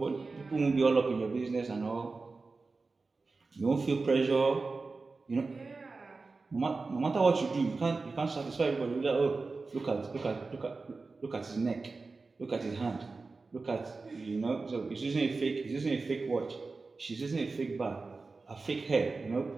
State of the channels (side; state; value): left; quieter; 3.9 dB